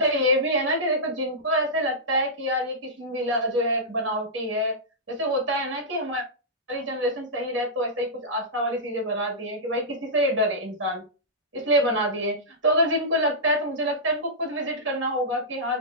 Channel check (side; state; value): both; normal; correlation -0.13